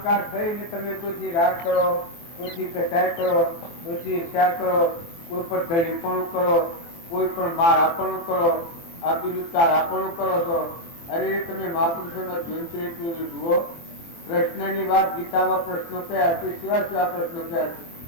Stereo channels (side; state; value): right; late; 24 ms